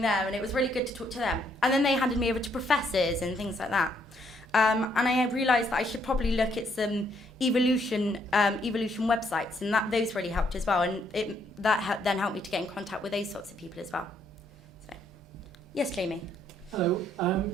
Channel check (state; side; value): normal; both; correlation 0.71